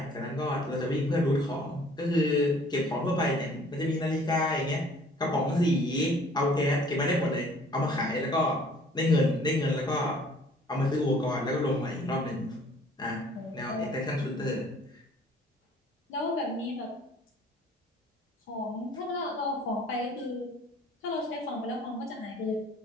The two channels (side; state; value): both; normal; correlation 0.55